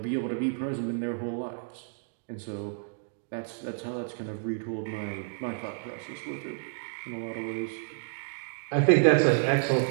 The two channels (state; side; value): silent; left; digital silence